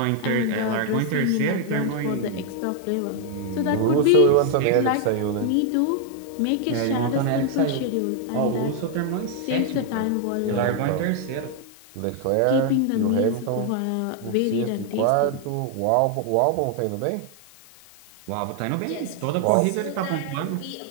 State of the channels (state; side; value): different; both; correlation 0.00